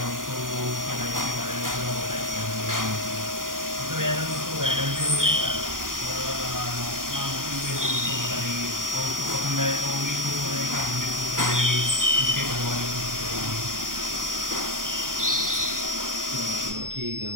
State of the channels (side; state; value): left; late; 0.90 ms